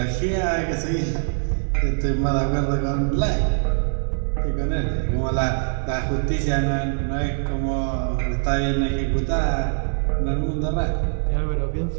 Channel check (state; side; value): silent; left; 61 dB below the other